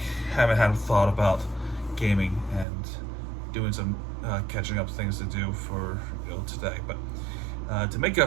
haven't had a thought about gaming and doing some catching up things to do for today. But to make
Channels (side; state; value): left; drops out; at 2.7 s